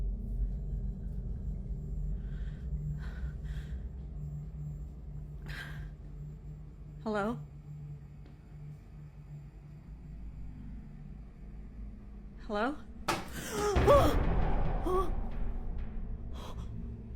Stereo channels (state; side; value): identical; both; correlation 1.00